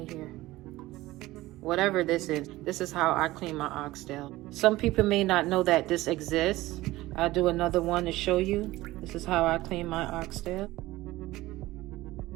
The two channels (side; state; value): left; quieter; 17.9 dB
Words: here. Whatever this is how I clean my oxtail. Some people may not know that this exists. I'll do another one to show you. This is how I clean my oxtail.